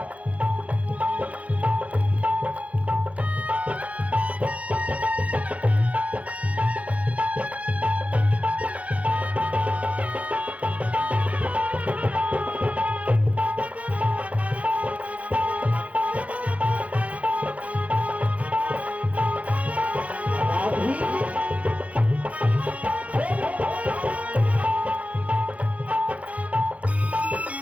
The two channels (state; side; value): late; left; 0.066 ms